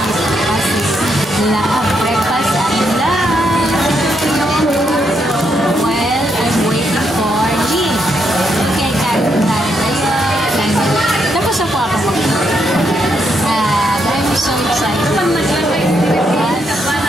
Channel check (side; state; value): both; normal; correlation 0.78